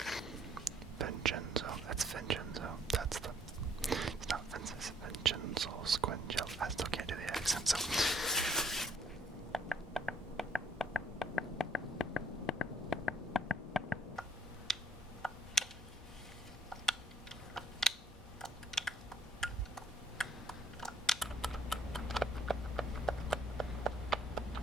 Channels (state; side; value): normal; both; correlation 0.64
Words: Vincenzo, that's Vincenzo. That's the. It's not Vincenzo, Vincenzo Squingelli. I still can't do the accent, so.